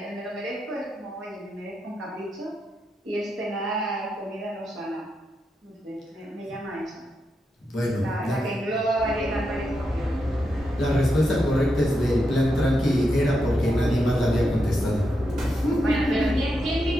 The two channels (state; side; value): normal; both; correlation 0.85